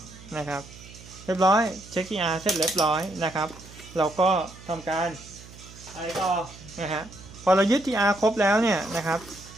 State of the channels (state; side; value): noise; right; hum, 19 dB below the sound